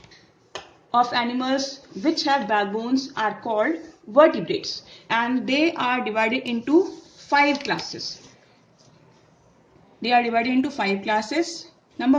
of animals which have backbones are called vertebrates, and they are divided into 5 classes. Number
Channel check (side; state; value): both; identical; correlation 1.00